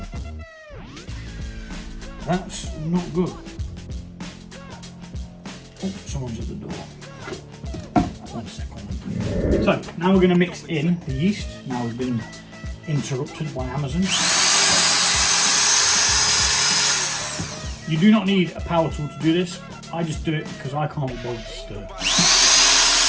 That's not good. Oh, someone's at the door. 1 second. So, now we're going to mix in the yeast. Now we've been interrupted by Amazon. You do not need a power tool to do this. I just do it because I can't be bothered to stir.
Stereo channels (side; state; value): both; identical; correlation 1.00